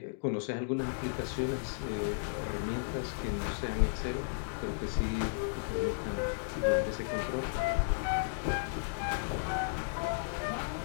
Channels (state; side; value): silent; right; digital silence